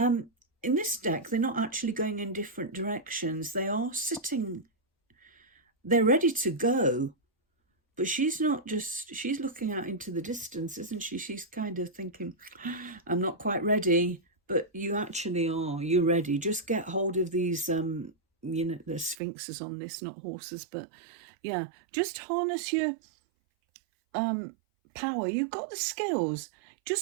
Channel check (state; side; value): drops out; left; at 19.2 s